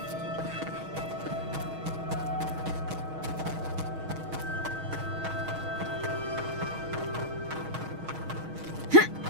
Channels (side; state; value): left; late; 6.3 ms